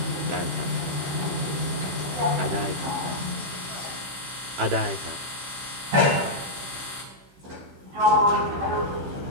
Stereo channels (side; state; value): left; late; 15 ms